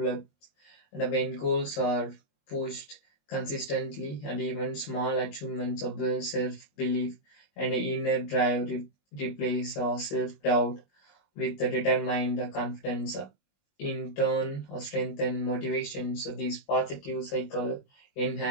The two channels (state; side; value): late; right; 21 ms